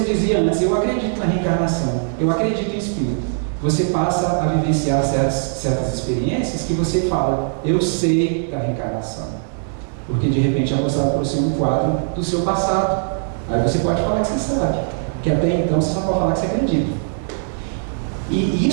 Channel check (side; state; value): left; silent; digital silence